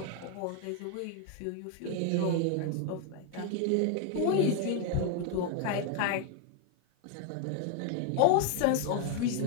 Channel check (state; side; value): different; both; correlation 0.01